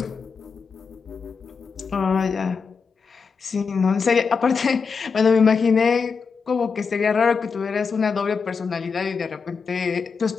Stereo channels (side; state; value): right; quieter; 5.4 dB